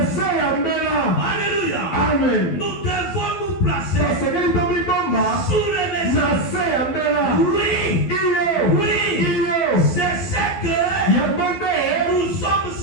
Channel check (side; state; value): right; late; 12 ms